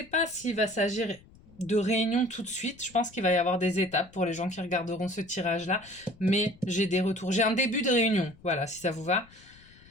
pas s'il va s'agir de réunion tout de suite. Je pense qu'il va y avoir des étapes pour les gens qui regarderont ce tirage-là. Mais j'ai des retours. J'ai un début de réunion. Voilà, si ça vous va.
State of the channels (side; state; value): left; noise; rumble, 25 dB below the sound